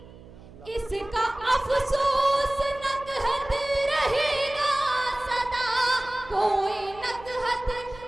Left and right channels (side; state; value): right; noise; hum, 20 dB below the sound